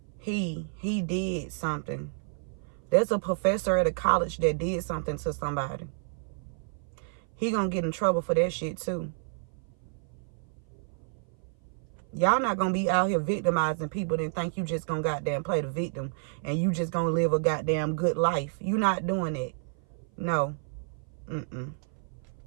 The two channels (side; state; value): left; silent; 56 dB below the other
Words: He did something. There's a professor at a college that did something to somebody. He gonna get in trouble for that shit too. Y'all not gonna be out here victimizing people and think you just gonna goddamn play the victim and you just gonna live a goddamn good life. You not doing it. No.